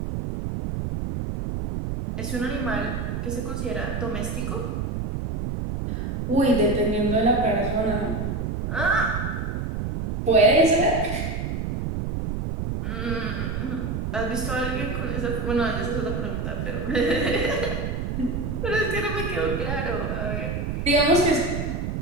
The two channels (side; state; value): right; noise; rumble, 2 dB below the sound